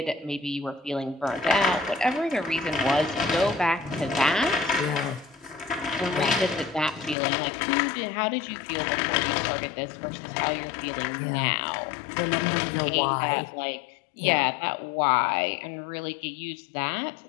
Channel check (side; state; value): right; drops out; at 7.2 s